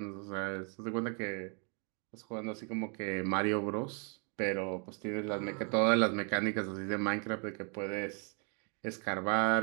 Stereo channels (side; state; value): left; quieter; 38.3 dB